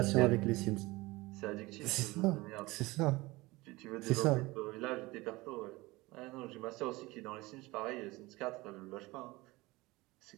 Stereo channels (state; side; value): quieter; left; 21.4 dB